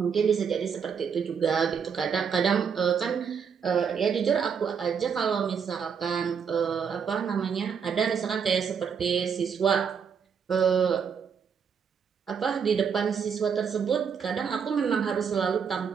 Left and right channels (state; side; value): quieter; left; 6.8 dB